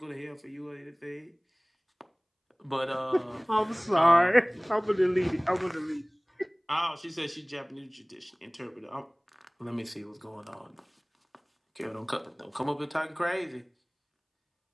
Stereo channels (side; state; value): both; identical; correlation 1.00